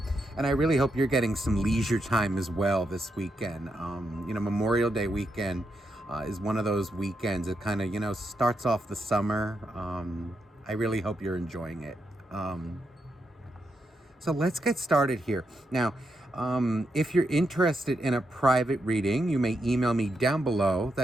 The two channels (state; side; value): normal; both; correlation 0.83